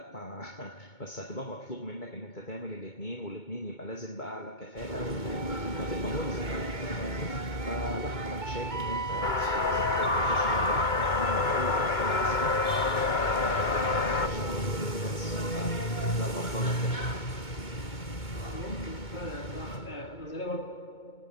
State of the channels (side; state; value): right; late; 2.2 ms